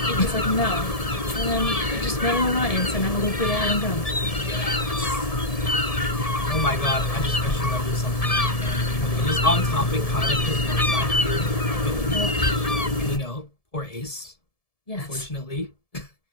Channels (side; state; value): right; late; 1.7 ms